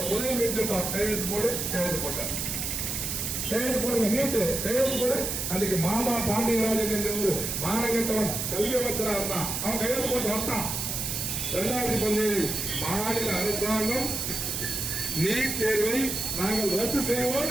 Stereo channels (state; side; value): noise; right; hiss, 2 dB below the sound